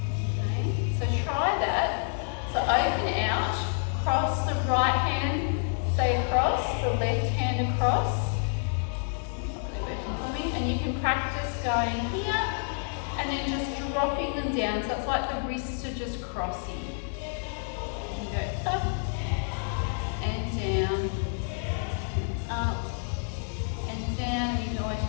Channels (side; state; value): right; silent; 59 dB below the other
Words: Okay, so try that. So open out, cross the right hand, say across, the left hand across. And you can practice going here and then just dropping them down. So it's like the wrists are just crossing. You go up and down, and up and down. You can always